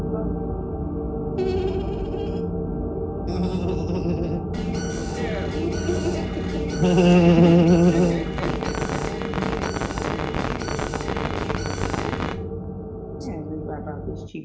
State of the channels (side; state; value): both; identical; correlation 1.00